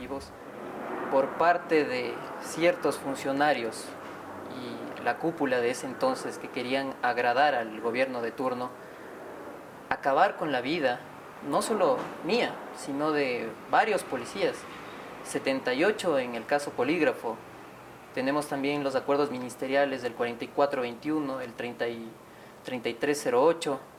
por parte de ciertos funcionarios y la cúpula de ese entonces que querían agradar al gobierno de turno, acabar con la vida no solo mía, sino de varios policías, 78 en el caso Polígrafo. Tenemos también los acuerdos ministeriales del 4421, el 3308.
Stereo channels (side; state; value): both; identical; correlation 1.00